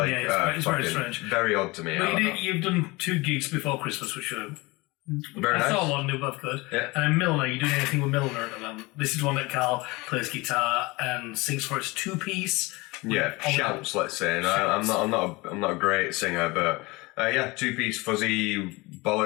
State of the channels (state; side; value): quieter; right; 23.6 dB